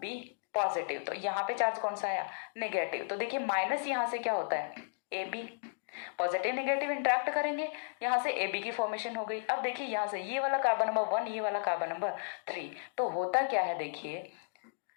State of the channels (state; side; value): silent; right; digital silence